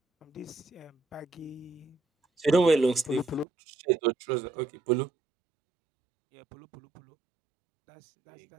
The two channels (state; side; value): drops out; left; at 3.5 s